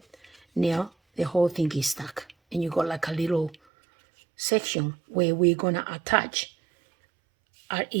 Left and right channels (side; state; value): left; drops out; at 3.6 s